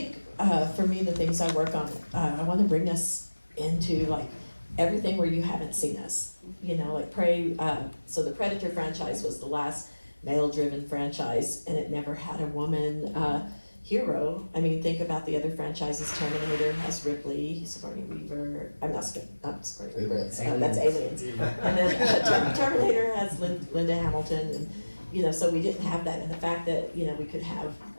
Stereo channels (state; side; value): inverted; both; correlation -1.00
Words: for me, the things I work on, I want to bring us into like everything where you haven't seen us. Like Prey. So the Predator franchise was the last male-driven franchise, and it never had a woman hero. I mean, think about the other franchises. Terminator has Ripley, Sigourney Weaver. I'm not Sigourney Weaver. That's Aliens. And then Terminator has Linda Hamilton, and so we didn't have that. And the fact that we could have